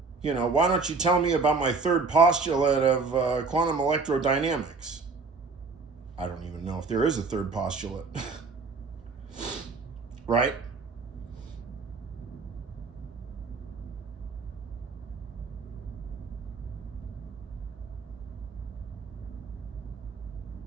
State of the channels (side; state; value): left; quieter; 4.3 dB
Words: don't you tell me about my third postulate of quantum electrodynamics? I don't even know if there is a third postulate. Right?